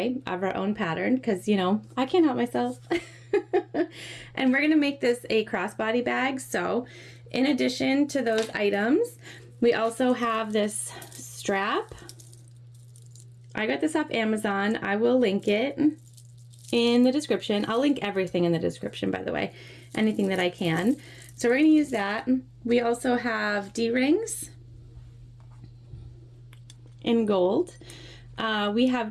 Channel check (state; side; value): identical; both; correlation 1.00